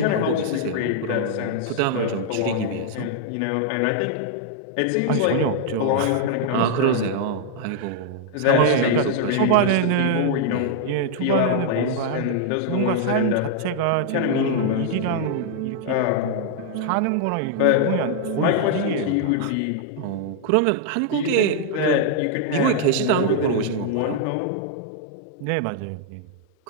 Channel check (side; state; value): both; different; correlation -0.01